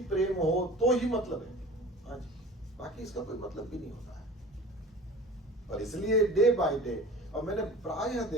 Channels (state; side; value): normal; both; correlation 0.40